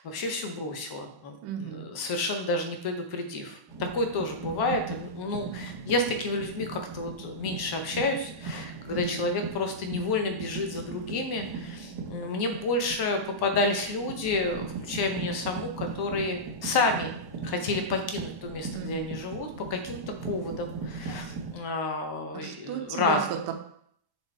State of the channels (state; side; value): late; left; 1.1 ms